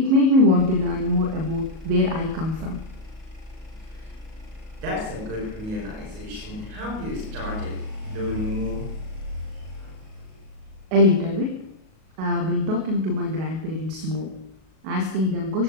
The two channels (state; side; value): late; left; 37 ms